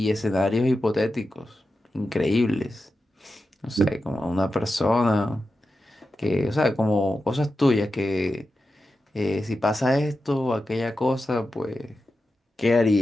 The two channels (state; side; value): normal; both; correlation 0.91